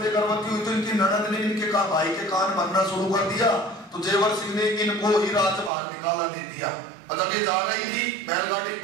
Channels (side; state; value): left; drops out; at 5.7 s